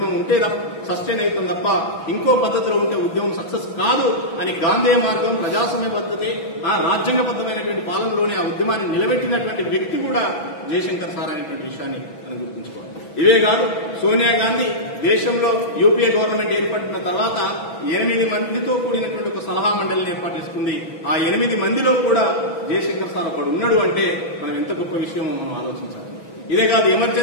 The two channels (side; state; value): right; late; 6.1 ms